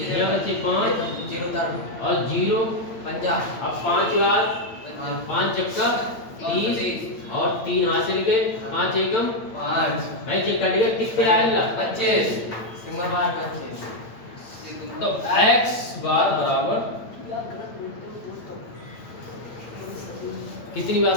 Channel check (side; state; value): right; late; 9.0 ms